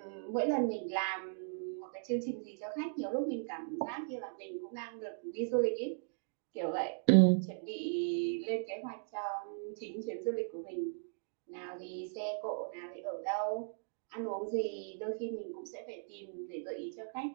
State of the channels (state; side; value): silent; left; digital silence